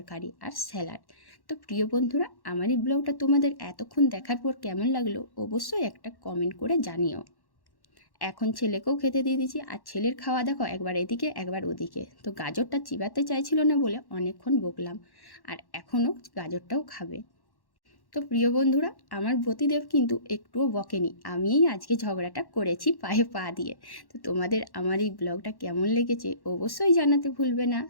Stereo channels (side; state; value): right; late; 1.1 ms